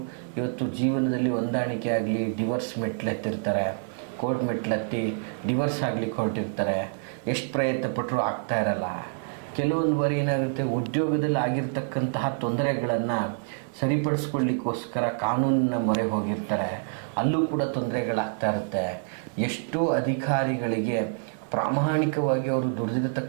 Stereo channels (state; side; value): silent; left; digital silence